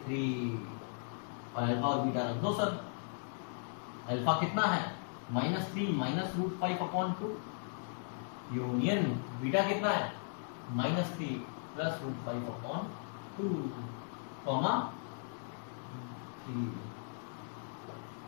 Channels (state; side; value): silent; right; digital silence